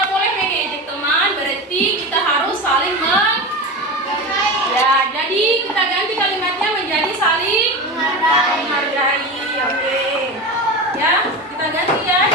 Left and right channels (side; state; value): both; normal; correlation 0.24